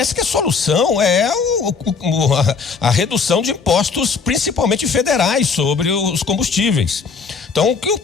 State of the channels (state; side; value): quieter; right; 5.2 dB